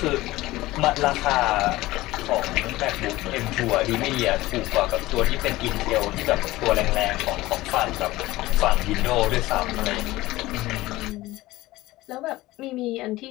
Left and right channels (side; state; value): right; quieter; 18.2 dB